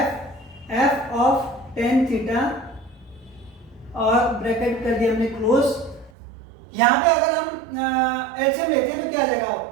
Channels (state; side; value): drops out; left; at 6.1 s